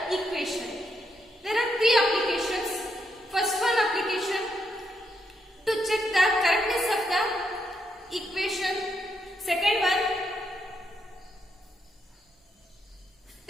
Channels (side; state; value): both; normal; correlation 0.79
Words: equation. There are three applications. First one application to check the correctness of the equation. Second one,